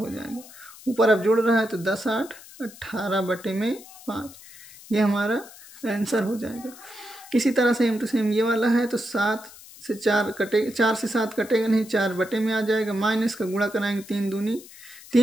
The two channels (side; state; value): left; noise; hiss, 19 dB below the sound